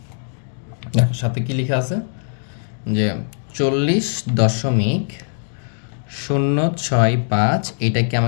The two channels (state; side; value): silent; right; digital silence